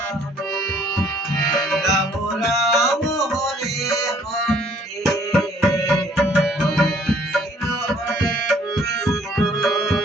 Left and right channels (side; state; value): both; normal; correlation 0.60